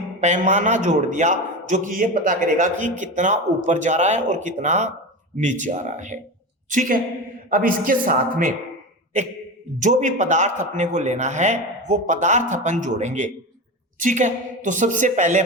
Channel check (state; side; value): normal; both; correlation 0.23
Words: पैमाना जोड़ दिया जो कि ये पता करेगा कि कितना ऊपर जा रहा है और कितना नीचे आ रहा है, ठीक है। अब इसके साथ में एक जो भी पदार्थ अपने को लेना है वो पदार्थ अपन जोड़ेंगे, ठीक है। तो सबसे पहले